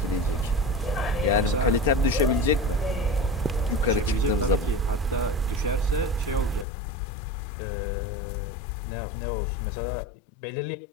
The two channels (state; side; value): drops out; right; at 6.7 s